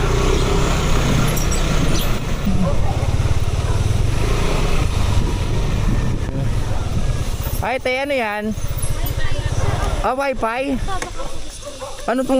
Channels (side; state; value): both; identical; correlation 1.00